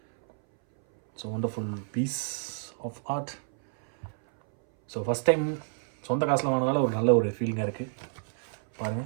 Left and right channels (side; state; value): left; silent; 59 dB below the other